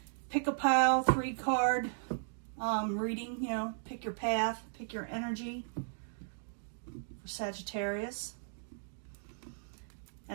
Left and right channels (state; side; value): silent; left; digital silence